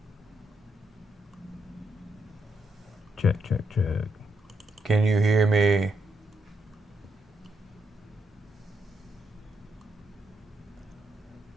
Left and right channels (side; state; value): both; normal; correlation 0.79